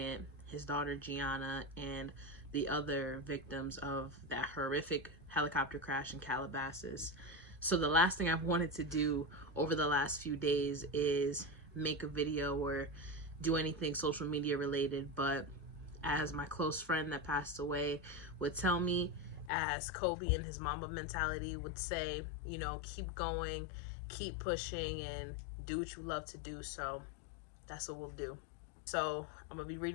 his daughter Gianna, and the other victims of that horrific helicopter crash in Calabasas. So the last thing I've wanted to do over the last few days is make a video or do anything social media related, but as my close friend that passed away would tell me, as Kobe and his Mamba mentality would say, you know, keep going, keep pushing, and do what you love to do. So that's what we'll do. So I'm gonna be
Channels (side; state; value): right; drops out; at 19.5 s